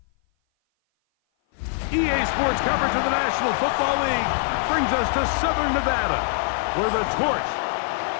EA Sports coverage of the National Football League brings us to Southern Nevada, where the torch,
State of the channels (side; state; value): right; silent; 57 dB below the other